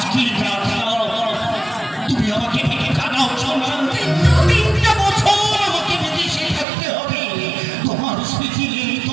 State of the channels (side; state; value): left; drops out; at 6.7 s